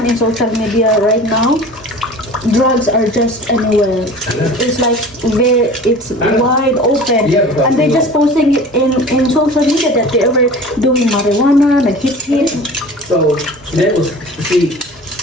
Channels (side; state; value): both; normal; correlation 0.40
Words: In social media right now, drugs are just anywhere. It's like it's wide open. Yeah, and they're just posting it in social media that they were doing marijuana, like hit. So that was, see,